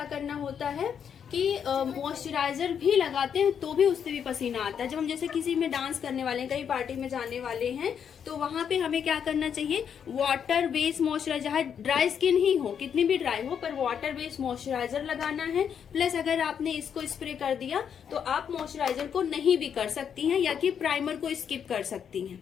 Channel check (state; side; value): quieter; right; 7.8 dB